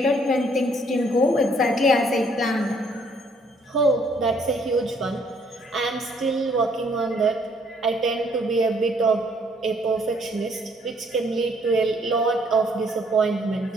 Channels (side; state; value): both; normal; correlation 0.65